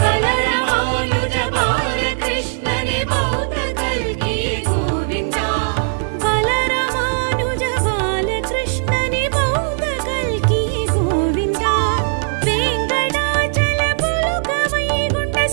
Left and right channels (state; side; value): silent; left; digital silence